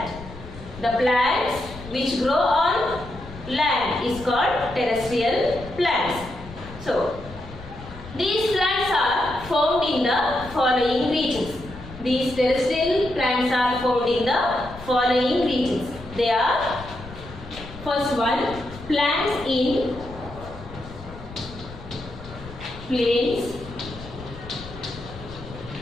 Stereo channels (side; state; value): left; noise; rumble, 15 dB below the sound